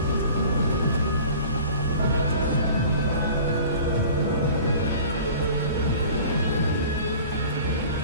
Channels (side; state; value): both; inverted; correlation -0.43